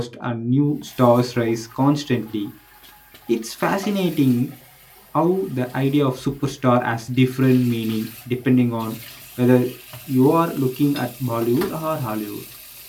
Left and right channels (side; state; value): both; identical; correlation 1.00